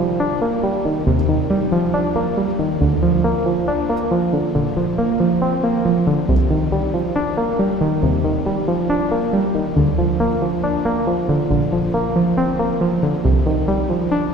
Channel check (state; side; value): normal; both; correlation 0.58